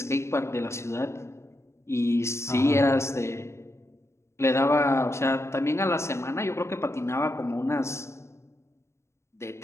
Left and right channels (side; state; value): right; late; 0.13 ms